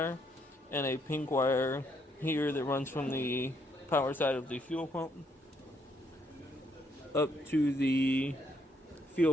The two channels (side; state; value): both; normal; correlation 0.73